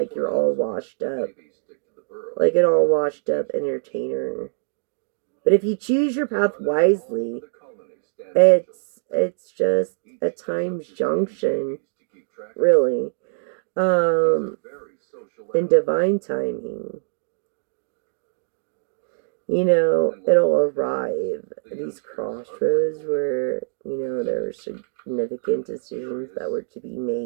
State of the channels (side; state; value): left; silent; digital silence